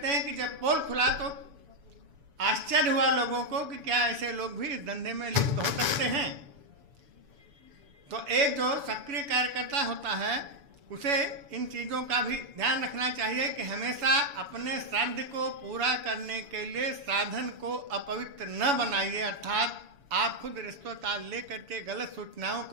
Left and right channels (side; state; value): left; late; 7.0 ms